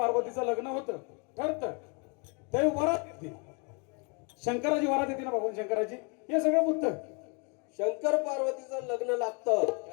लग्न होतं ठरतं, त्यावेळी वरात येते, शंकराची वरात येते ना भगवान शंकराची. हे सगळं बुद्ध शंकर पार्वतीचं लग्न लागतं.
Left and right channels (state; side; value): quieter; right; 34.7 dB